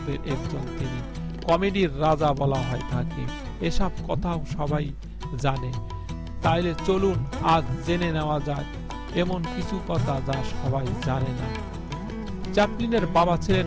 একজন তিনি। কমেডির রাজা বলা হয় তাকে। এসব কথাও সবাই জানে। তাইলে চলুন আজ জেনে নেওয়া যাক এমন কিছু কথা যা সবাই জানে না। চ্যাপলিনের বাবা ছিলেন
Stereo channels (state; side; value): identical; both; correlation 1.00